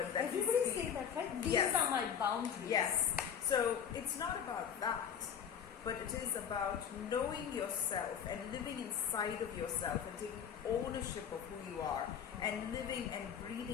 that you Everybody see. say that, right? These Yes. are my boundaries. Yes. So it's not about that, but it is about knowing yourself and living inside of yourself and taking ownership of who you are and living and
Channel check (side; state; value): right; quieter; 8.1 dB